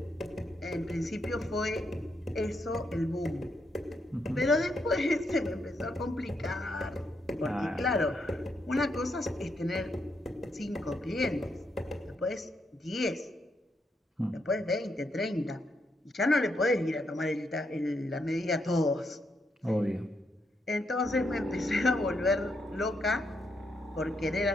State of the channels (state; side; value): normal; both; correlation 0.79